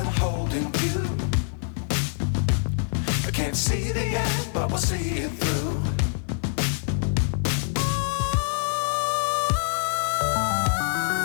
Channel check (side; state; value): right; silent; digital silence